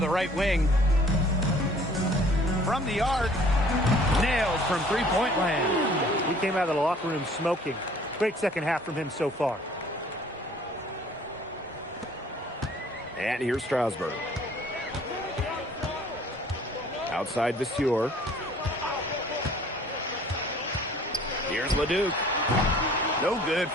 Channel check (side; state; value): both; normal; correlation 0.54